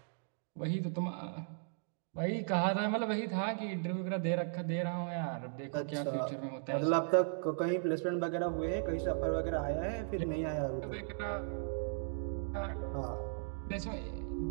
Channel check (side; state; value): left; silent; digital silence